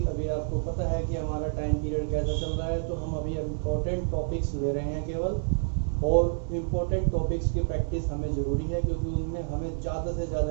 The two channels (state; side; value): silent; left; 59 dB below the other